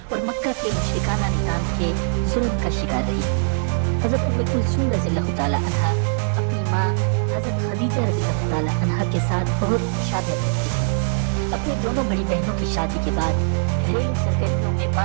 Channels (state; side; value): silent; left; 64 dB below the other